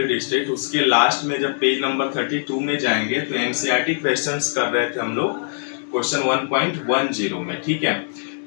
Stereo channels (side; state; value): right; silent; digital silence